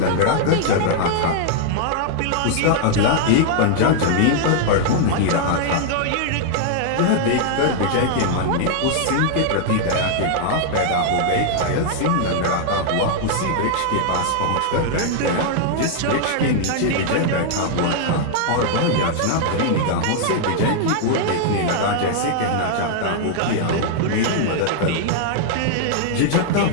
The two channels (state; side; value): different; both; correlation -0.01